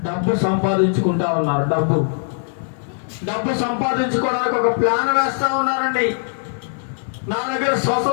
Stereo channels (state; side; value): silent; right; digital silence